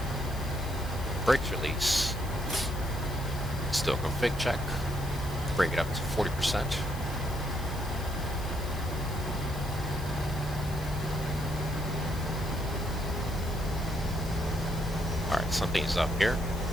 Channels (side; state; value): left; noise; hiss, 16 dB below the sound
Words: Brakes release. Still config check. Bring it up to 40%. Alright, something's up here.